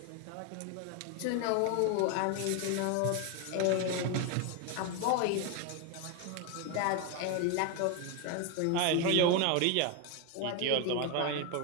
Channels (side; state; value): both; different; correlation 0.01